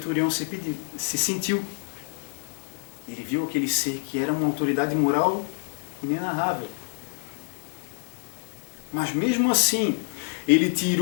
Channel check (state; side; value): silent; right; 60 dB below the other